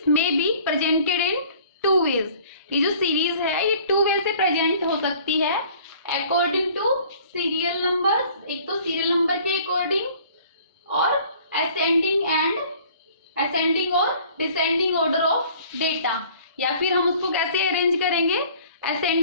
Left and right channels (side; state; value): both; inverted; correlation -0.52